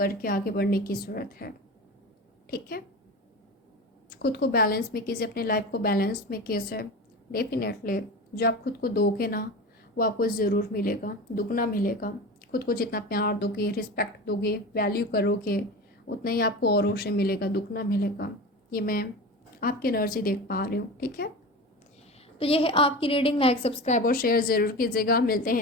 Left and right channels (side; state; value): both; normal; correlation 0.29